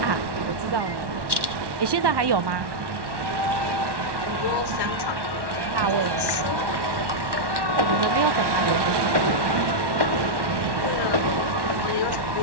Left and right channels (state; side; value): late; left; 1.1 ms